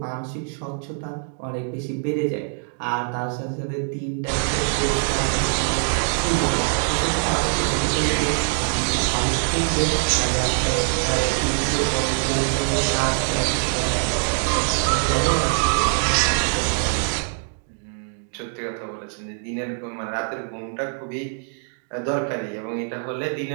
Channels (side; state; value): left; silent; 57 dB below the other